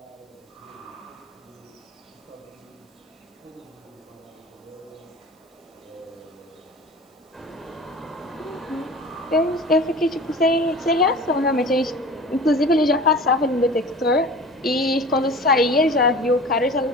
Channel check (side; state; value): both; normal; correlation 0.39